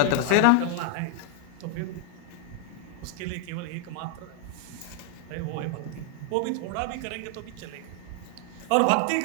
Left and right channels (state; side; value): different; both; correlation 0.00